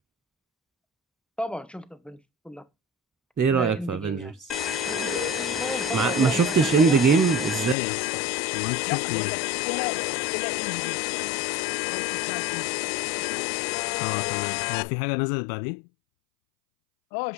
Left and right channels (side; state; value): right; drops out; at 7.8 s